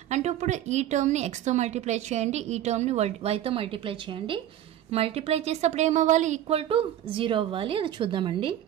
అంటే ఇప్పుడు ఈ టర్మ్ని ఎక్స్తో మల్టిప్లై చేయండి, ఈ టర్మ్ని వైతో మల్టిప్లై చేయండి. మల్టిప్లై చేసేటప్పుడు ఏమవ్వాలి, ఈక్వల్ టు 0 అవ్వాలి. అది చూద్దామండి.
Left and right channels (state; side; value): quieter; left; 11.9 dB